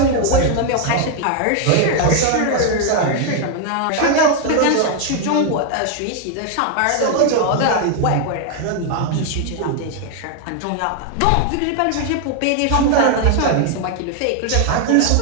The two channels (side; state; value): both; different; correlation 0.00